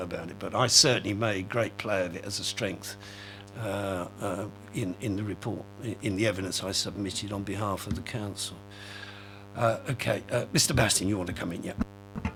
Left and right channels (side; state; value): both; identical; correlation 1.00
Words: about it. But I certainly made great play of it as a strength in the report, in the evidence I submitted on behalf of the council. Okay, Mr. Basting, you want to come in? Yeah.